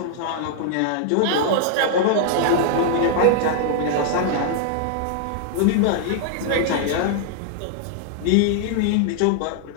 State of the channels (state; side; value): different; both; correlation -0.01